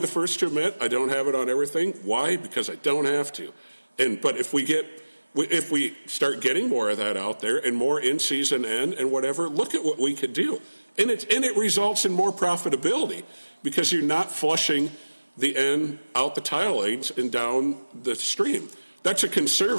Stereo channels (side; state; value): both; inverted; correlation -1.00